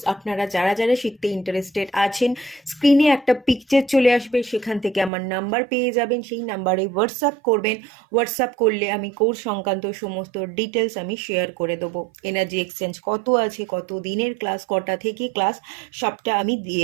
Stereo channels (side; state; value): left; drops out; at 5.1 s